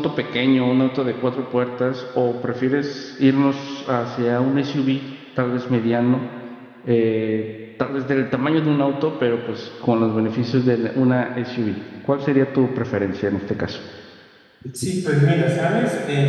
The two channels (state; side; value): identical; both; correlation 1.00